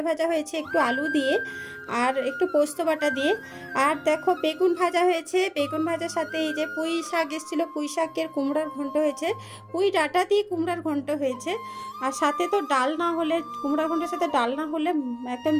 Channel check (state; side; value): identical; both; correlation 1.00